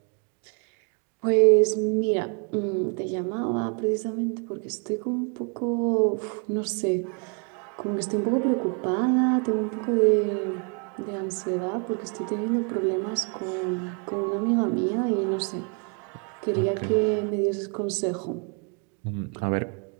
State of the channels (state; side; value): quieter; left; 38.2 dB